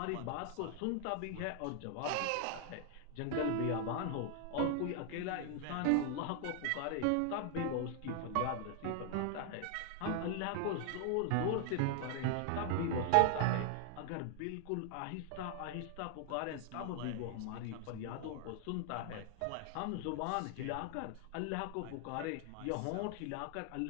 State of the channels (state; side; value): different; both; correlation 0.00